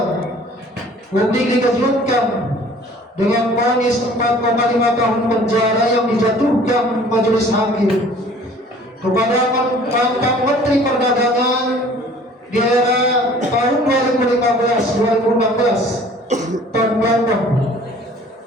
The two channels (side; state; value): both; normal; correlation 0.51